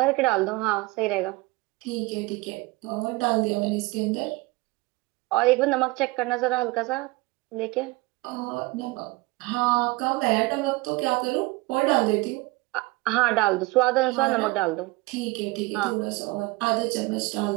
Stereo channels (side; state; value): left; quieter; 21.8 dB